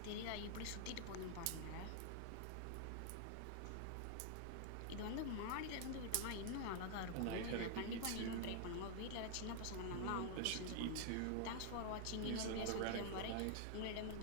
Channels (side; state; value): both; different; correlation 0.00